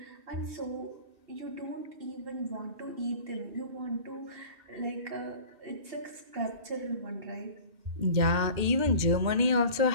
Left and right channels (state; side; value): late; left; 2.1 ms